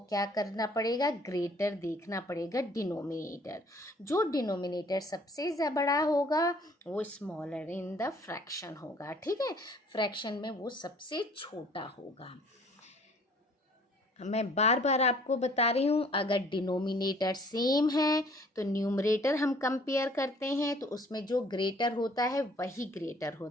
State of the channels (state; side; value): normal; both; correlation 0.56